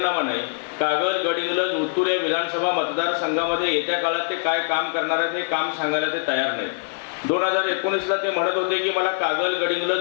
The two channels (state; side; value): silent; right; digital silence